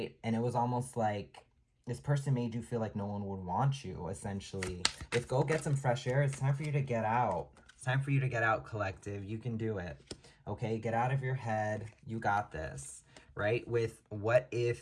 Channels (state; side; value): identical; both; correlation 1.00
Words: And it was almost like this person made you feel like no one would want you, essentially. With go get some fresh air, it's time for you to get out. It's time for you to get out, collective. You can do it, okay? Get out of your head. You got this, right? With what